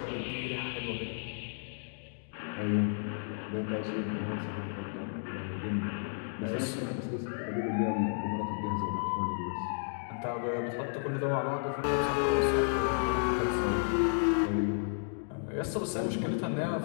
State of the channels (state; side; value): silent; right; digital silence